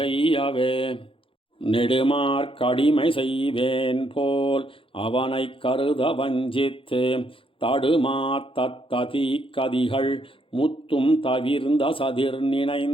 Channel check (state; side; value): late; right; 0.26 ms